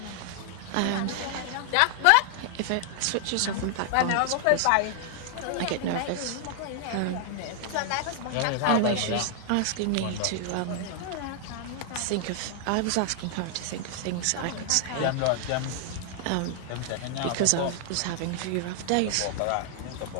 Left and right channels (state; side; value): different; both; correlation 0.00